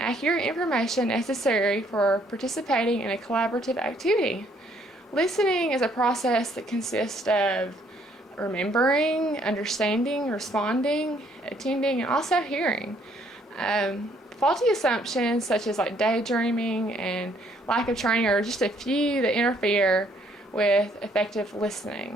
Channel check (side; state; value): both; normal; correlation 0.66